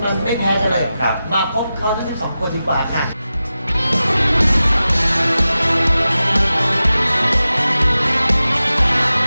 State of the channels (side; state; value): both; inverted; correlation -0.93